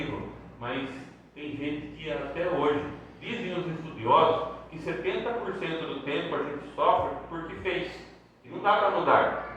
Mas tem gente que até hoje, dizem os estudiosos, que 70% do tempo a gente sofre porque fez. E não dá para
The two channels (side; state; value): both; identical; correlation 1.00